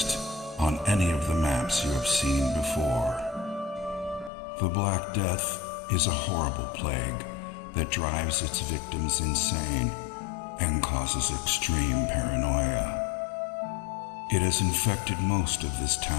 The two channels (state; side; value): drops out; right; at 4.3 s